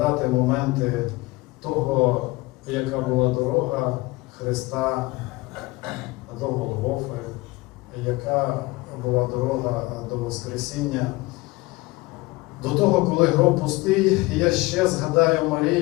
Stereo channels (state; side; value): quieter; right; 22.2 dB